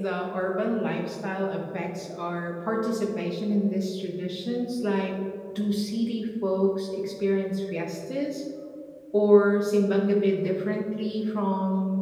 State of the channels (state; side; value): identical; both; correlation 1.00